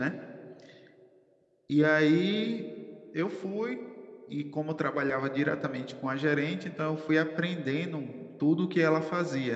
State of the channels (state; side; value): identical; both; correlation 1.00